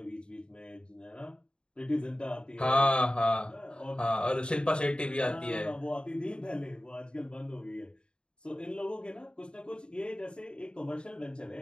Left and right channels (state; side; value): late; right; 0.052 ms